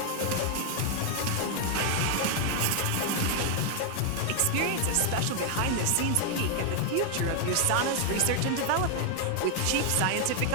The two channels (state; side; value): different; both; correlation 0.00